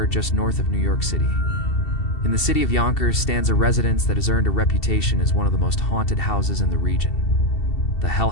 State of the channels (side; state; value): right; late; 2.7 ms